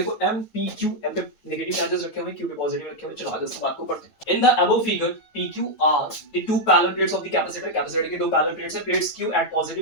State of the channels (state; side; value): late; right; 9.1 ms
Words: m p q, m पे नेगेटिव चार्जेस रखे हुए हैं, q पे पॉजिटिव रखे हुए हैं। चलो आगे इस बात को पढ़ते हैं। In the above figure p q are the two parallel plates of the capacitor। Capacitor की दो पैरेलल प्लेट्स है, plates q at